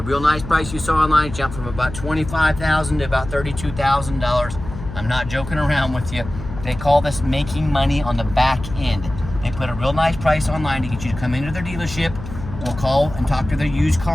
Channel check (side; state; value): left; noise; hum, 11 dB below the sound